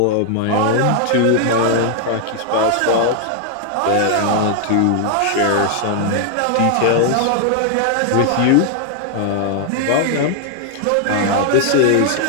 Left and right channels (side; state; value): both; different; correlation 0.00